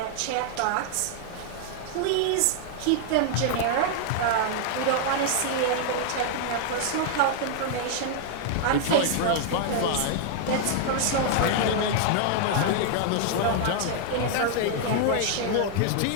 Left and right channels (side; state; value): both; different; correlation 0.00